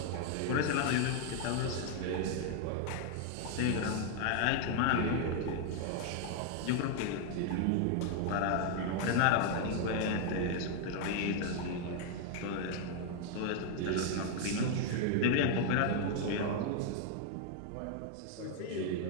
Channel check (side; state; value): both; different; correlation 0.00